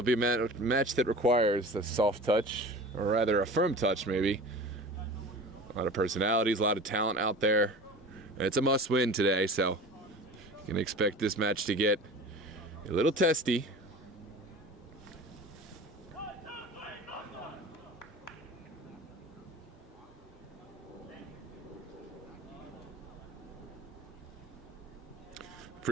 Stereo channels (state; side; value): normal; both; correlation 0.37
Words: be a match that requires a soft touch, or rather a firm touch maybe, A lot of personalities, a lot of talent out there. And it's a must-win today, so you can expect this match to get a little testy.